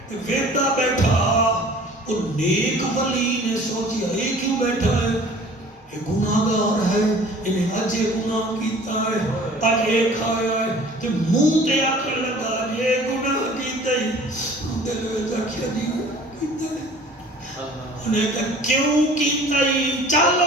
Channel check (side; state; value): both; normal; correlation 0.48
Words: ویدہ بیٹھا، اور نیک ولی نے سوچیا یہ کیوں بیٹھا ہے؟ یہ گناہگار ہے، انہیں اجے گناہ کیتا ہے، اج یہ کھایا ہے، تو منہ تے آکھر لگا یہ گناہ کیتا ہے، دل میں آکھیا جی کیتا ہے، انہیں کہا کیوں کیتا ہے؟ چل